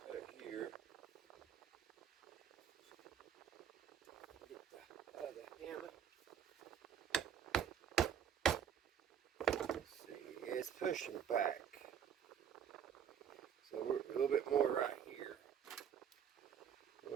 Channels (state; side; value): quieter; left; 8.4 dB